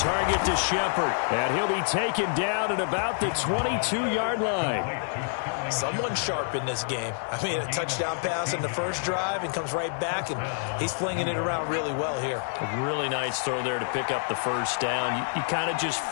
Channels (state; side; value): silent; right; digital silence